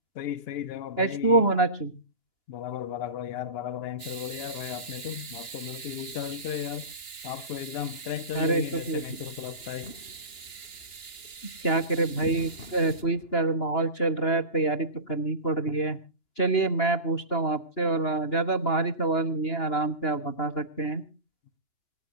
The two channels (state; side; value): late; right; 2.9 ms